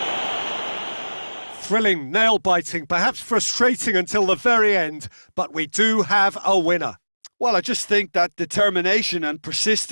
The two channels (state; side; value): inverted; both; correlation -1.00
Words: Thrilling, nail-biting, perhaps frustrating until the very end, but we do have a winner. Well, I just think that determination and